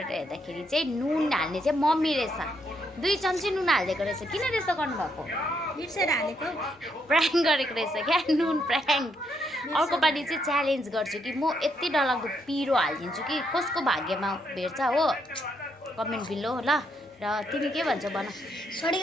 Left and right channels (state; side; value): normal; both; correlation 0.76